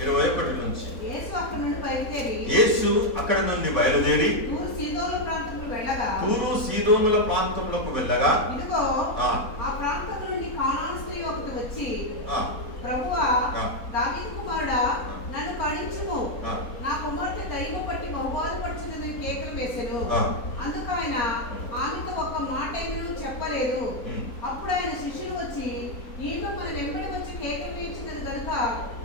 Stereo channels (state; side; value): late; right; 4.0 ms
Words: 21 నుంచి. యేసు అక్కడి నుండి బయలుదేరి తూరు సీదోనుల ప్రాంతంలోకి వెళ్ళగా ఇదిగో ఆ ప్రాంతం నుండి కానాను స్త్రీ ఒకటి వచ్చి, ప్రభువా, దావీదు కుమారుడా, నన్ను కరుణించుము, నా కుమార్తె దయ్యము పట్టి బహుబాధపడుచున్నది కేకలు వేసెను. అందుకు ఆయన ఆమెతో ఒక్క మాట ఏమీ చెప్పలేదు. అప్పుడు ఆయన శిష్యులు వచ్చి, ఈమె మన వెంబడి వచ్చి కేకలు వేయించినది కనుక